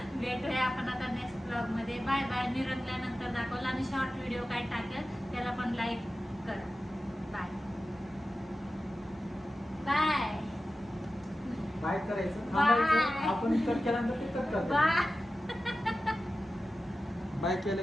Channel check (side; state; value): both; normal; correlation 0.94